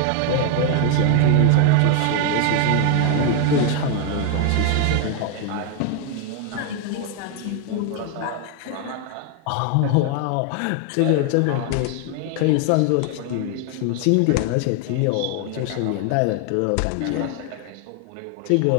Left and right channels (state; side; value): different; both; correlation 0.01